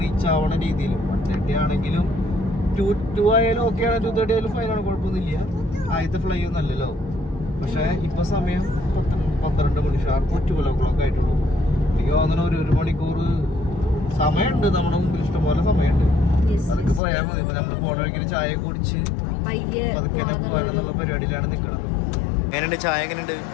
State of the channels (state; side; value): drops out; right; at 17.0 s